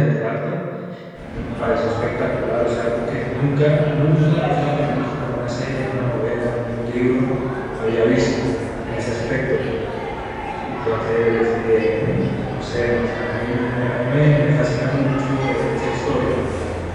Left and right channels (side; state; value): both; identical; correlation 1.00